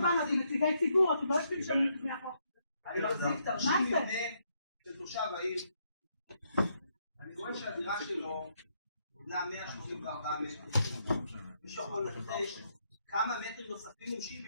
באנו, זה נציגי ציבור, אתם לא יושבים שם לפני החוק. אני מחזיק תרשים מבנה של תושב העיר. אני רואה שהדירה שלו בונה 184 מטרים. מישהו יכול לנחש כמה מטרים נוספים?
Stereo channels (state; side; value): inverted; both; correlation -0.76